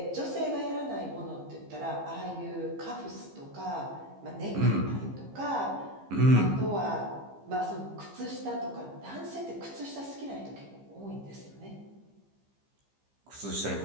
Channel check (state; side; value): late; left; 15 ms